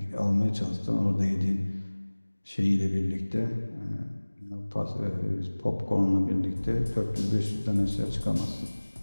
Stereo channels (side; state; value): both; inverted; correlation -1.00